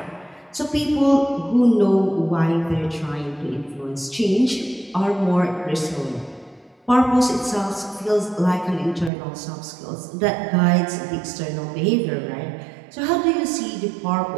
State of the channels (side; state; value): left; drops out; at 9.1 s